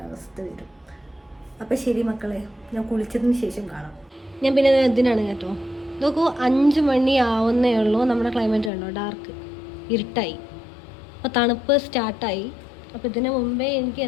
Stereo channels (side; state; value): right; drops out; at 8.7 s